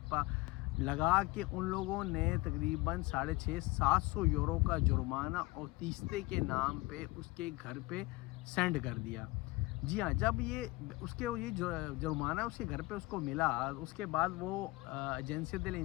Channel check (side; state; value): right; quieter; 21.7 dB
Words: लगा के उन लोगों ने तकरीबन 650-700 यूरो का जुर्माना और तीस्ते के नाम पे उसके घर पे सेंड कर दिया। जी हाँ, जब ये ये जुर्माना उसके घर पे उसको मिला, उसके बाद वो एजेंसी दिल